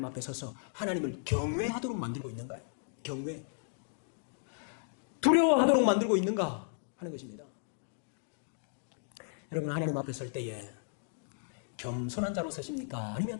앞에 서서 하나님을 경외하도록 만들고 있는가요? 경외. 두려워하도록 만들고 있는가 하는 것입니다. 여러분, 하나님 앞에 설 때에 겸손한 자로 서십니까?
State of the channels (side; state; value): right; silent; digital silence